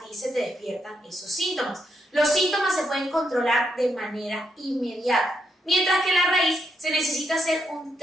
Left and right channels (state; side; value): normal; both; correlation 0.79